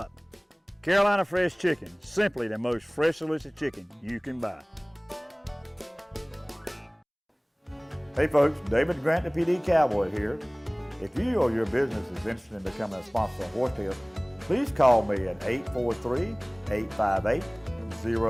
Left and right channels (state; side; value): identical; both; correlation 1.00